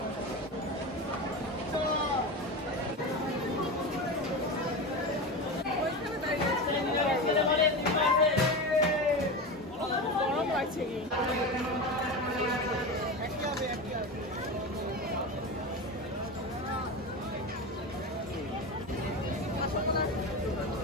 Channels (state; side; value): normal; both; correlation 0.23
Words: গরম লাগছে কি?